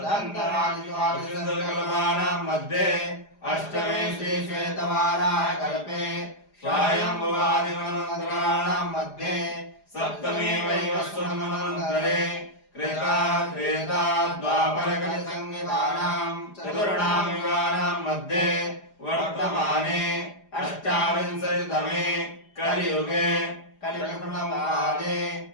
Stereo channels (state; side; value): late; right; 4.9 ms